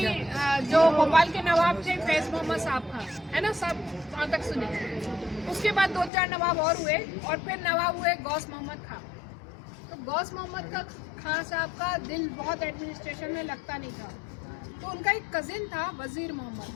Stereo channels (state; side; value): drops out; right; at 6.1 s